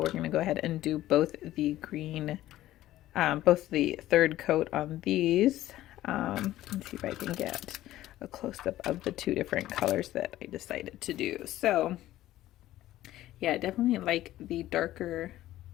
going to go ahead and do both the green, both the third coat on these. Let's see if I can get a close-up of the 2 different colors that I decided to do. So yeah, I definitely like the darker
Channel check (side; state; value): right; quieter; 14.7 dB